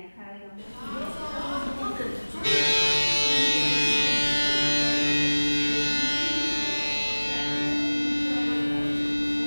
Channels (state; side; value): inverted; both; correlation -1.00